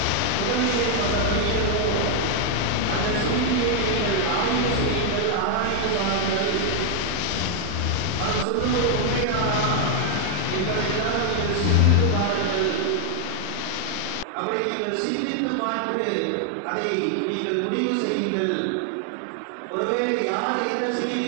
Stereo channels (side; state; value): both; different; correlation 0.00